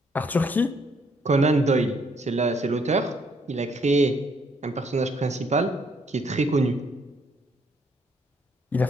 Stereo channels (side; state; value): both; normal; correlation 0.68